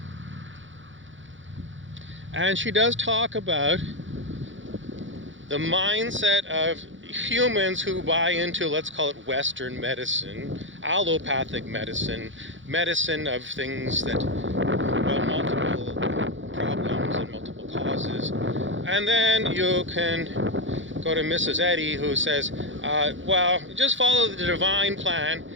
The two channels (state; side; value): late; left; 0.56 ms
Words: And she does talk about the mindset of humans who buy into, let's call it Western medicine, allopathic medicine, medicine of things that, multiple problems and multiple causes. And then you can go to Mrs. Eddy, who says, just follow the divine plan,